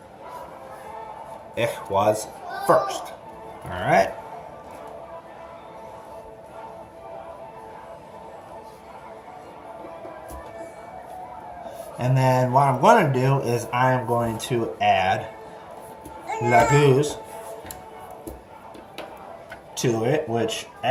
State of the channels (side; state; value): both; identical; correlation 1.00